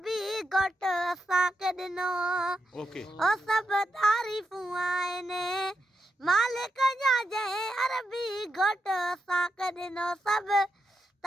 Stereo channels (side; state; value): both; normal; correlation 0.84